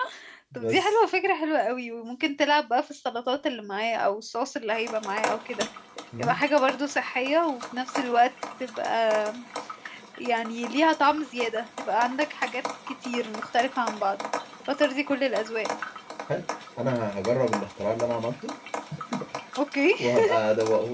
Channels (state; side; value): identical; both; correlation 1.00